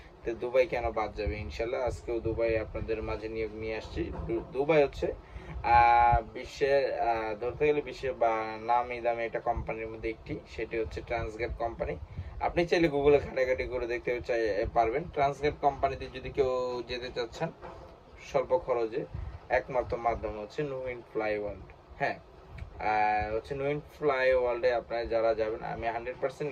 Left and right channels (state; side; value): identical; both; correlation 1.00